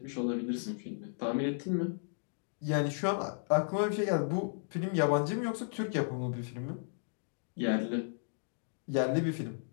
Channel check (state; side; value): silent; right; digital silence